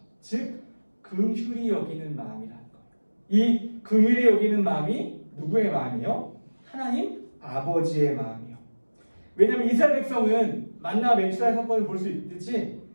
즉 긍휼히 여기는 마음이라는 거예요. 이 긍휼히 여기는 마음이 누구의 마음이요? 하나님 아버지의 마음이요. 왜냐하면 이스라엘 백성은 만나 메추라의 사건을 볼 수 있듯이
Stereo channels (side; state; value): both; inverted; correlation -1.00